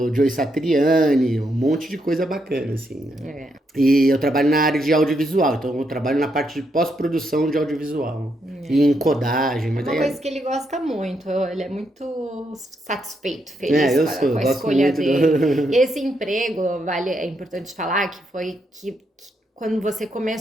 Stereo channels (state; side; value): normal; both; correlation 0.79